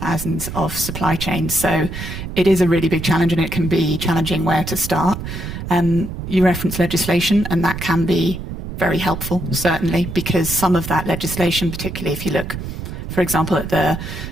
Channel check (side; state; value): right; noise; rumble, 8 dB below the sound